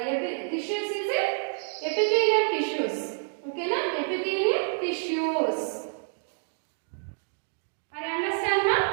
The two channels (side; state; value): left; silent; digital silence